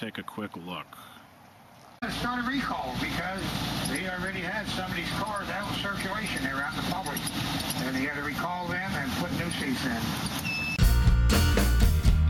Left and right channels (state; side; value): identical; both; correlation 1.00